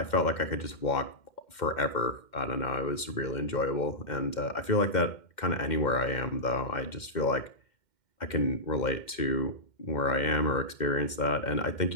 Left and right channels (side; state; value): right; late; 2.1 ms